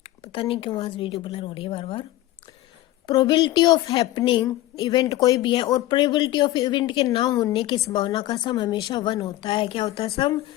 पता नहीं क्यों आज वीडियो ब्लर हो रही है बार बार। प्रोबेबिलिटी ऑफ हैपनिंग इवेंट कोई भी है, और प्रोबेबिलिटी ऑफ इवेंट के ना होने की संभावना का सम हमेशा 1 होता है। क्या होता है सम,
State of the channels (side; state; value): right; quieter; 15.7 dB